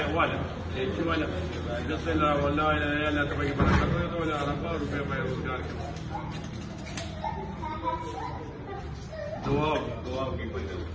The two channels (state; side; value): identical; both; correlation 1.00